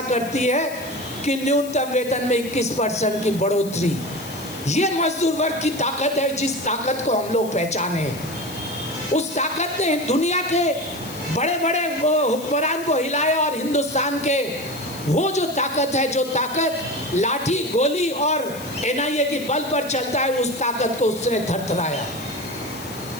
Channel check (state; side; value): noise; left; hiss, 15 dB below the sound